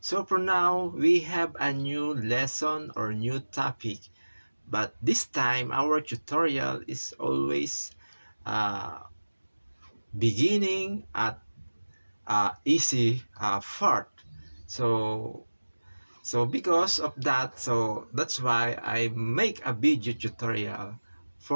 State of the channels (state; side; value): inverted; both; correlation -1.00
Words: So for now, we have a new lesson or new topic. But this time, our tutorial is always uh, beginning at easy part. So because of that, so that's why I make a video tutorial